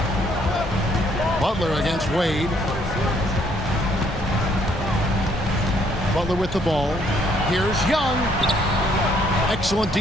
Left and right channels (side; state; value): both; normal; correlation 0.67